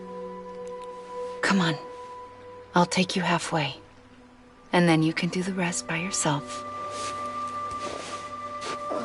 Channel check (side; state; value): both; identical; correlation 1.00